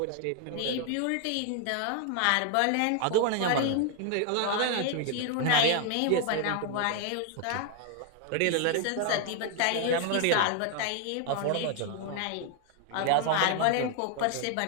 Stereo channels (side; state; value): both; different; correlation 0.00